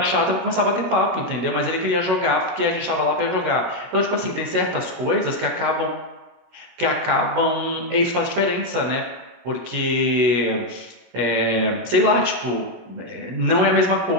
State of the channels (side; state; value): left; late; 16 ms